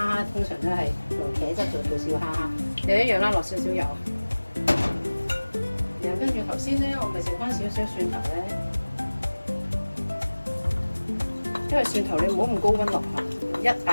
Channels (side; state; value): both; inverted; correlation -1.00